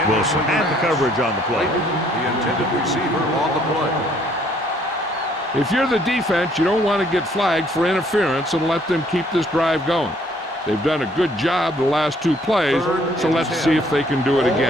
Wilson had the coverage on the play. The intended receiver on the play. If you're the defense, you don't want to get flagged for interference and let them keep this drive going. They've done a good job the last 2 plays, so let's see if they can do it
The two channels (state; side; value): normal; both; correlation 0.63